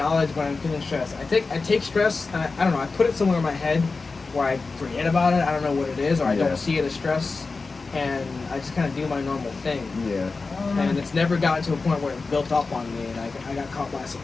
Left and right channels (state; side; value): quieter; right; 4.1 dB